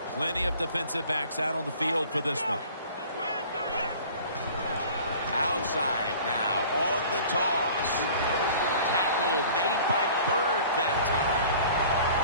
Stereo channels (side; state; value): both; inverted; correlation -0.47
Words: Plenty of defensive backs out on the field for this one. Outside now on the toss. Tackle made by Bird that time.